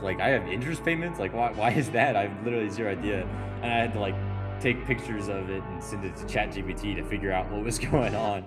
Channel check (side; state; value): both; identical; correlation 1.00